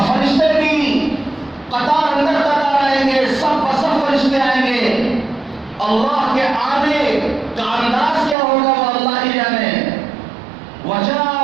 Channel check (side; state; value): left; drops out; at 8.3 s